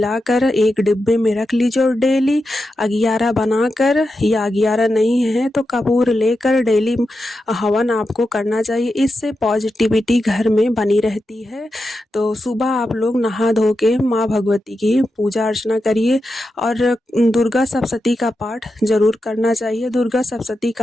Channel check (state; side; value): normal; both; correlation 0.89